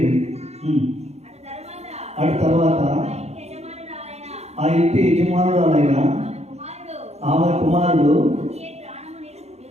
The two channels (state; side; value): late; left; 0.31 ms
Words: అటు తర్వాత ఆ ఇంటి యజమానురాలైన ఆమె కుమారుడు